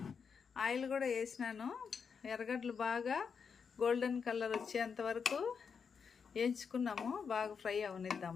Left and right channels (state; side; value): quieter; right; 6.2 dB